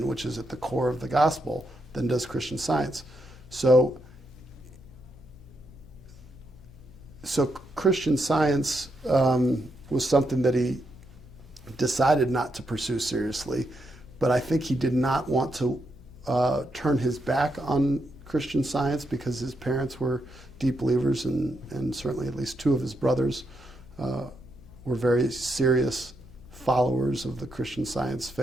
which is at the core of the gospel, than does Christian Science. So Christian Science was something that he decided not to pursue seriously, but I think he did not want to turn his back on Christian Science because his parents were deep believers, and certainly at least two of his brothers were very serious followers of the Christian Science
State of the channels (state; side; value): noise; left; hum, 21 dB below the sound